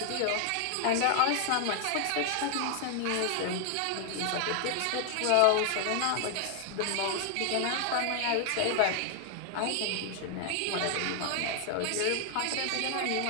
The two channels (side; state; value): both; different; correlation 0.00